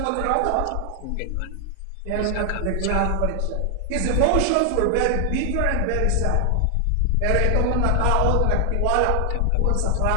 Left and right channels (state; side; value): different; both; correlation 0.00